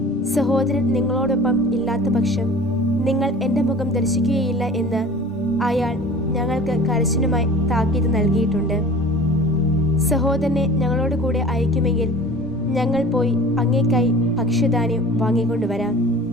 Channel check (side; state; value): both; normal; correlation 0.42